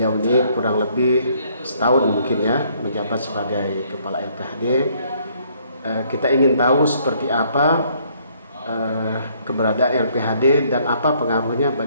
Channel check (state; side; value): inverted; both; correlation -0.66